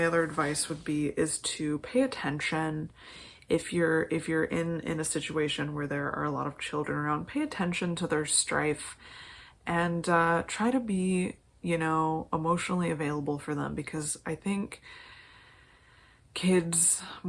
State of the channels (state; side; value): identical; both; correlation 1.00